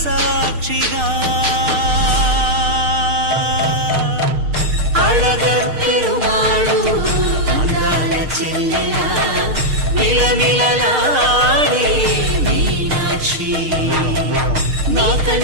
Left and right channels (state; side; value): late; left; 6.5 ms